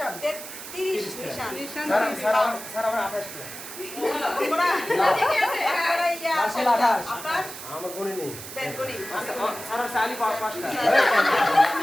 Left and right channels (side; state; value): right; noise; hiss, 11 dB below the sound